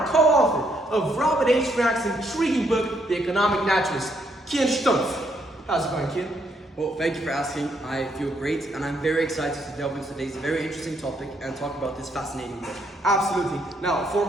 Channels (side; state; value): both; normal; correlation 0.73